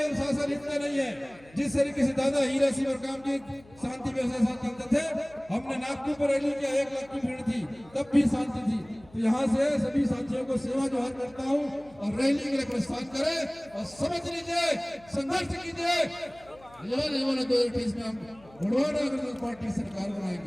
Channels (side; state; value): left; noise; hum, 25 dB below the sound